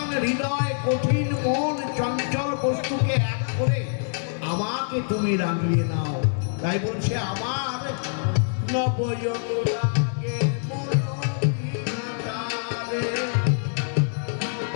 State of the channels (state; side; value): silent; right; digital silence